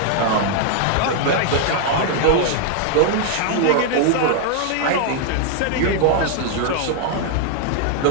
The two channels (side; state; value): both; different; correlation 0.00